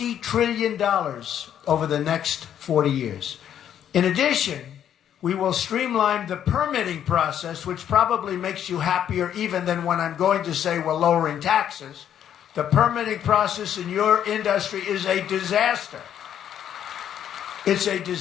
trillion over the next 40 years. In addition, we will streamline the permitting process, which probably makes you happier even than when I'm going to say we're lowering taxes. The permitting process in your industry is a disaster. It's a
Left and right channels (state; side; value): quieter; right; 9.8 dB